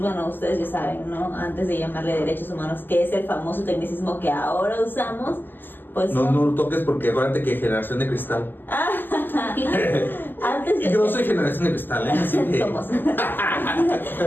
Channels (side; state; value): right; late; 0.092 ms